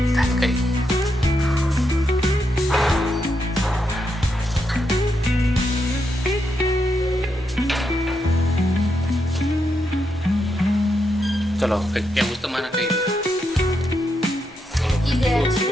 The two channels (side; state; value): both; normal; correlation 0.82